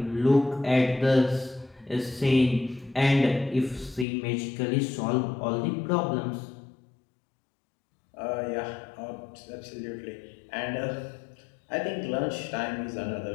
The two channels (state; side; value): drops out; right; at 4.0 s